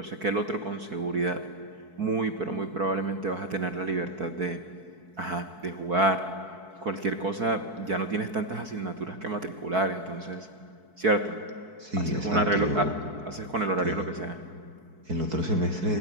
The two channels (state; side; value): late; left; 4.6 ms